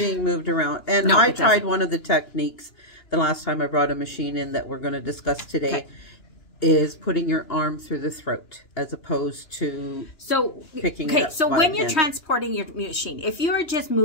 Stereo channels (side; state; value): right; late; 2.9 ms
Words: moved around. And no, I tried one of the techniques the last time I brought a machine in that we're going to discuss today, is putting your arm through the throat as opposed to picking it up. So when you're transporting your machine, if you're just